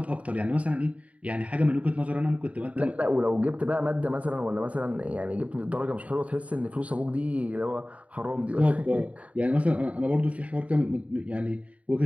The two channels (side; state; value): left; late; 0.067 ms